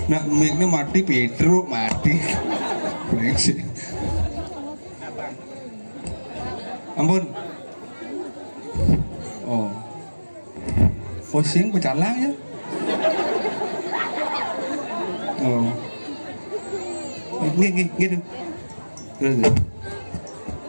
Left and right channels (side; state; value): both; inverted; correlation -1.00